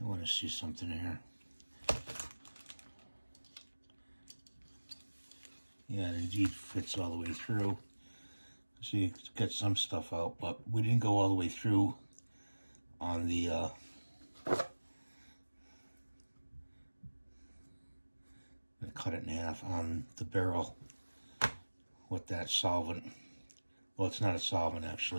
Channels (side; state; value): both; inverted; correlation -1.00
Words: want to see something here. Yeah, it indeed fits all the way through. See, it's got some stuff out, but we didn't go all the way through on the I cut it in half on the barrel with that solvent. Well, it's not a solvent